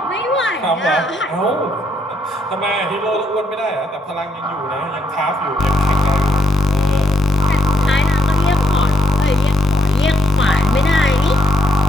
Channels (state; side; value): normal; both; correlation 0.76